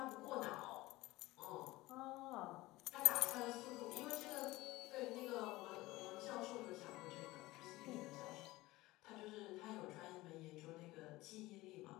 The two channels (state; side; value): quieter; right; 19.1 dB